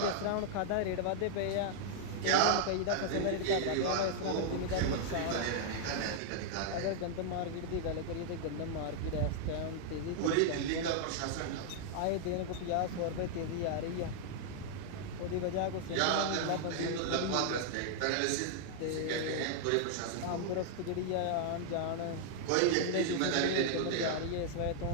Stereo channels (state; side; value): different; both; correlation -0.01